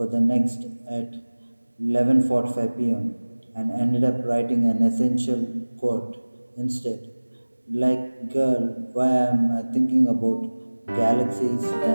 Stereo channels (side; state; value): both; inverted; correlation -1.00